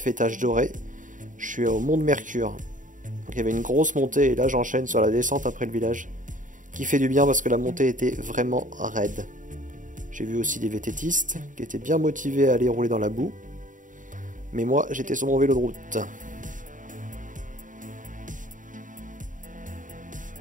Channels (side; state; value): left; late; 0.38 ms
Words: doré. Je suis au Mont de Mercure. Donc il y avait une grosse montée et là j'enchaîne sur la descente après le village. Qui fait du bien parce que la montée était vraiment raide. J'ai vu aussi des VTTistes qui étaient bien motivés à aller rouler dans la boue. Mais moi j'étais sur mon vélo de route.